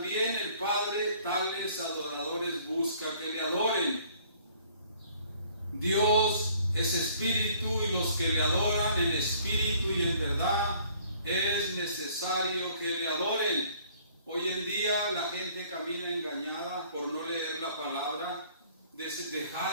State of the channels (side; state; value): both; inverted; correlation -0.57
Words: el Padre tales adoradores busca que le adoren. Dios es espíritu y los que le adoran en espíritu y en verdad es necesario que le adoren. Hoy en día la gente camina engañada por no leer la palabra,